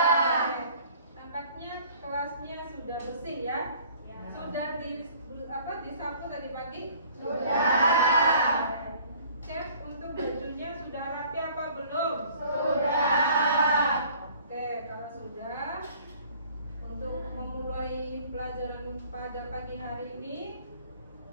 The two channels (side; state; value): both; inverted; correlation -0.53